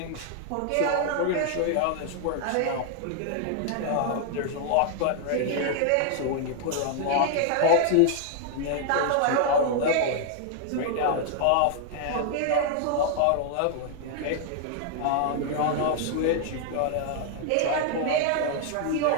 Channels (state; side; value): different; both; correlation 0.00